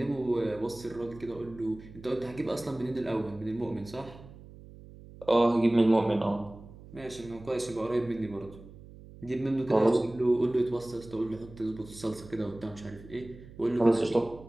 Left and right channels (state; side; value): noise; right; hum, 18 dB below the sound